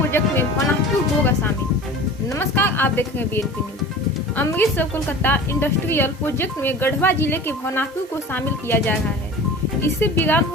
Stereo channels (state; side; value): normal; both; correlation 0.38